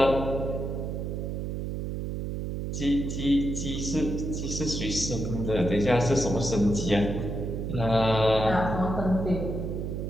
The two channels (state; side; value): noise; right; hum, 3 dB below the sound